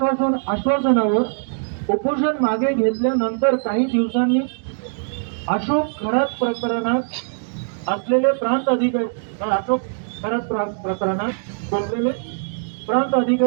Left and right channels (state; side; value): silent; left; digital silence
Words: उपोषण मागे घेतल्यानंतर काही दिवसांनी अशोक खरात प्रकरणात असलेले प्रांत